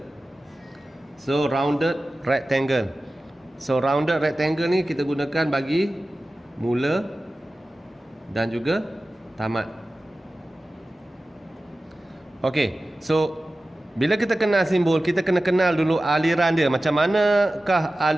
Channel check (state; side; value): normal; both; correlation 0.95